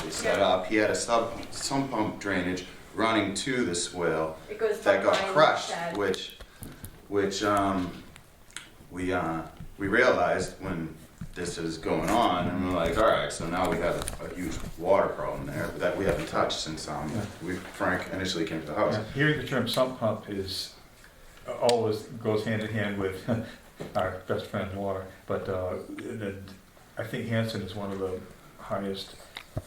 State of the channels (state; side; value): identical; both; correlation 1.00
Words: set Yeah. up. He had a sump pump drainage running to the swale It goes that got behind the crushed, shed. which we realized when this is going on, and we're like, all right, so now we have a huge water problem there that we haven't touched since Frank initially came to the house. Yeah, hearing the term sump pump is always goes hand in hand with our best friend water, but and I think Hanson is one of the highest